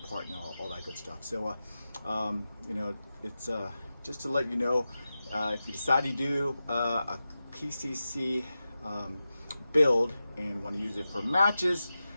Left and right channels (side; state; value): both; inverted; correlation -0.93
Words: and all that good stuff. So it's just to let you know, if you decide to do a PCC build and want to use it for matches,